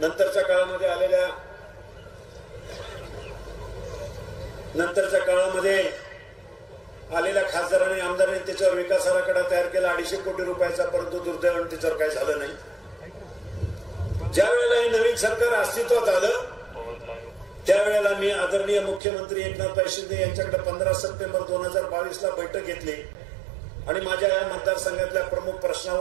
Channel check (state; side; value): drops out; left; at 19.0 s